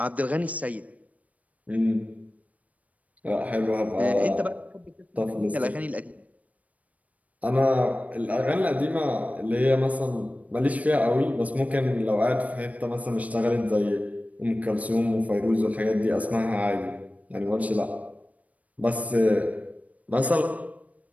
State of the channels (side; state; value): left; late; 0.070 ms